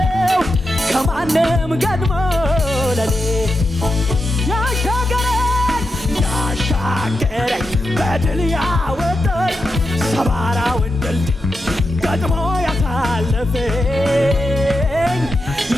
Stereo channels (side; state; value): both; normal; correlation 0.88